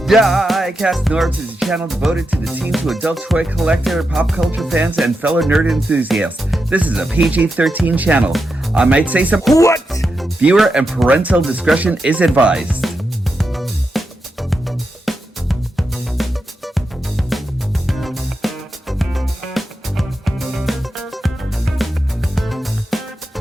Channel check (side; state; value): both; normal; correlation 0.87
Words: DIECAST NORBZ is a channel devoted to the teen to adult toy collector, pop culture fans, and fellow nerd enthusiasts. This is a PG-13 channel. I might say some what? Viewer and parental discretion is advised.